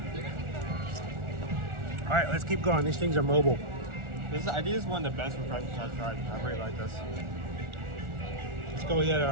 All right, let's keep going. These things are mobile. I think this is one of the best refreshments I've tried. I really like this. Let's go hit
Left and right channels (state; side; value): late; left; 1.4 ms